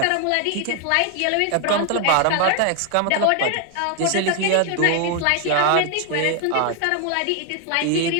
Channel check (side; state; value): both; different; correlation 0.01